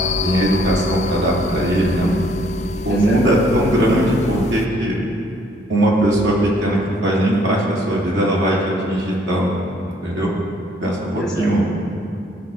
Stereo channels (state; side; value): normal; both; correlation 0.64